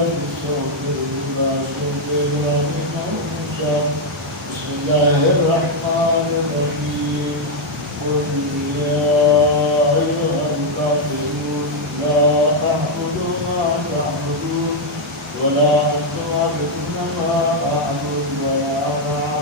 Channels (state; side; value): normal; both; correlation 0.00